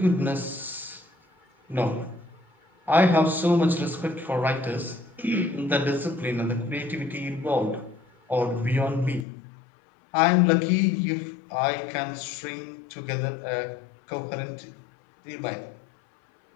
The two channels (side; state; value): right; drops out; at 9.2 s